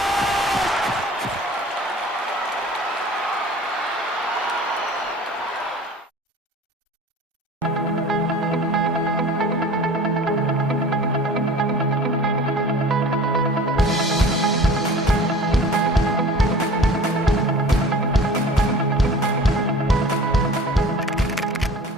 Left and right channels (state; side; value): normal; both; correlation 0.43